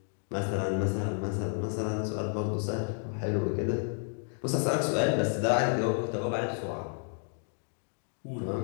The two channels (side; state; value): right; silent; 57 dB below the other